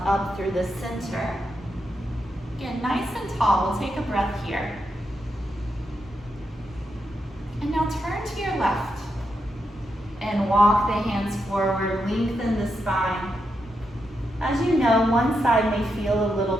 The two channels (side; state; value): both; normal; correlation 0.84